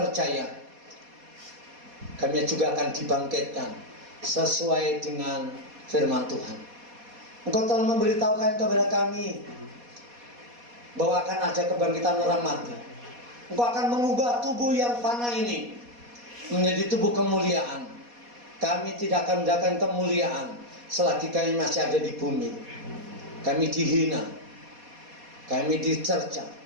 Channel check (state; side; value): late; left; 4.2 ms